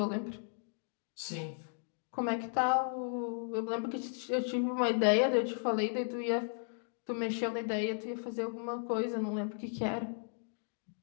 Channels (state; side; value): silent; right; digital silence